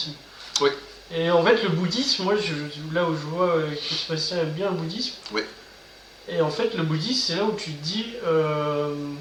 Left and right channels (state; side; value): identical; both; correlation 1.00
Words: Oui. Et en fait, le bouddhisme, moi, là où je vois que Sébastien aime bien le bouddhisme. Oui. Et en fait, le bouddhisme, c'est là où tu te dis,